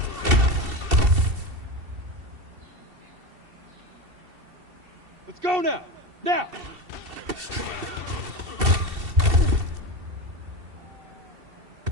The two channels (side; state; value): left; late; 2.7 ms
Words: Let's go now. Now.